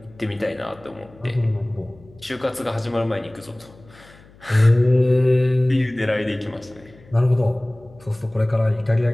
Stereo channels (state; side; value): noise; left; hum, 25 dB below the sound